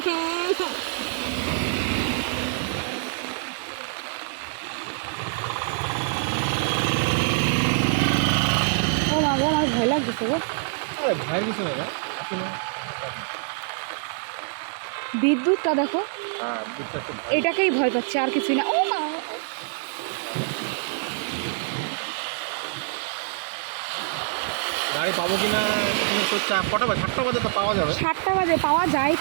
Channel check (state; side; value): silent; left; digital silence